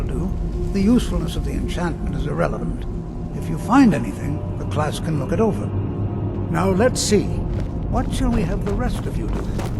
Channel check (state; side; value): identical; both; correlation 1.00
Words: do. The usefulness of the enchantment is irrelevant. If you find anything, the class can look it over. Now let's see. What shall we have the rest of you do?